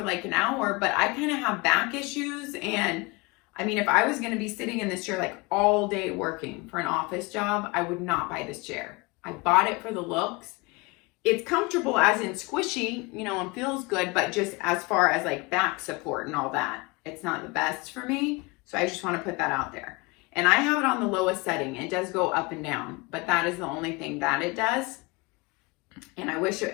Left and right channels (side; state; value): right; quieter; 25.9 dB